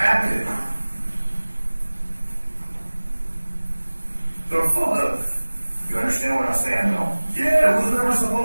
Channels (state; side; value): inverted; both; correlation -1.00